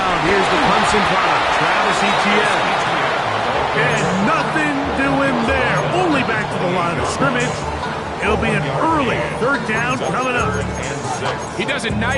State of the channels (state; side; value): identical; both; correlation 1.00